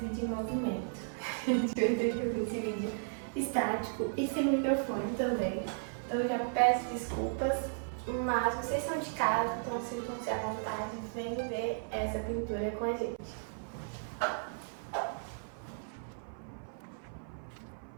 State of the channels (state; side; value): silent; left; 54 dB below the other